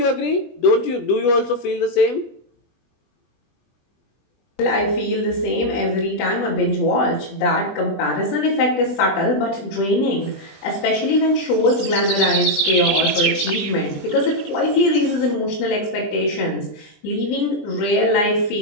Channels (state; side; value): late; right; 20 ms